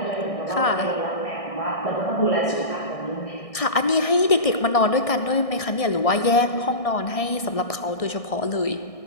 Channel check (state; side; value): late; right; 1.6 ms